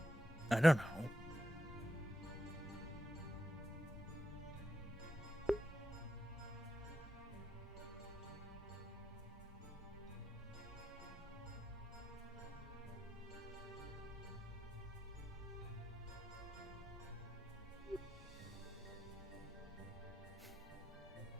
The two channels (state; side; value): normal; both; correlation 0.85